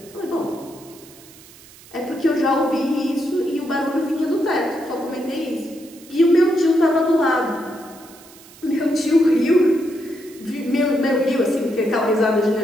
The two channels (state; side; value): noise; right; hiss, 22 dB below the sound